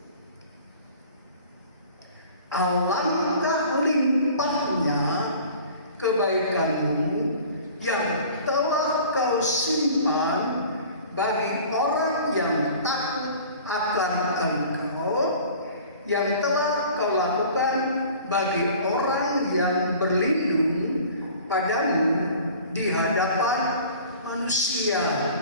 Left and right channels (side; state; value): both; inverted; correlation -0.46